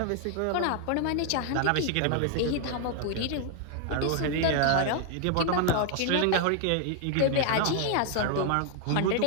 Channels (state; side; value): different; both; correlation 0.00